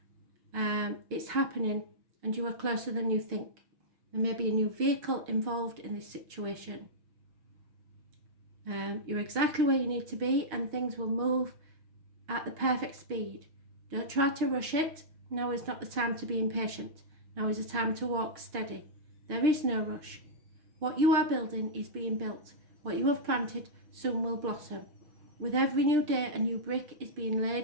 It's happening and you are closer than you think. There may be a new vehicle involved in this situation. You're exactly where you need to be and things will move at the perfect speed. Don't try to rush it. Now is not the time to be impatient. Now is the time to walk steady. There is no rush. What you are building is being built. What you have planted soon will blossom. With every new day, a new brick is being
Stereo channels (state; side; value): late; left; 6.6 ms